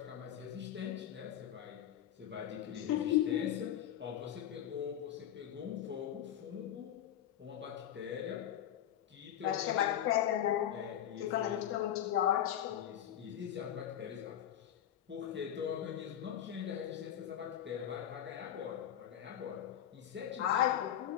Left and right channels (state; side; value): quieter; right; 10.8 dB